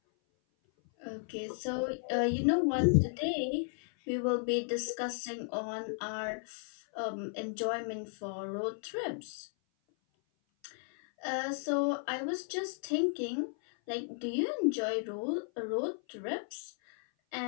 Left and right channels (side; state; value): right; silent; 55 dB below the other